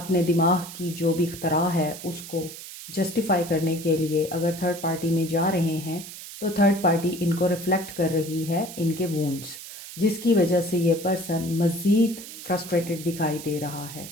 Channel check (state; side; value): noise; right; hiss, 13 dB below the sound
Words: दिमाग की जो भी इख्तरा है उसको जस्टिफाई करने के लिए अगर थर्ड पार्टी में जा रहे हैं, तो थर्ड पार्टी इनको रिफ्लेक्ट कर रही है इनके वूंड्स, जिसकी वजह से ये पर्सन मज़ीद फ्रस्ट्रेटेड दिखाई दे रहा